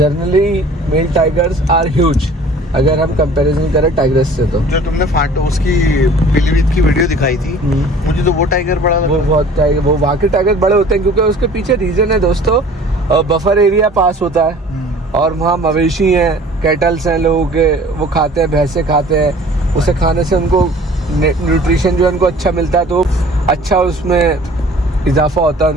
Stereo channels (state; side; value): normal; both; correlation 0.48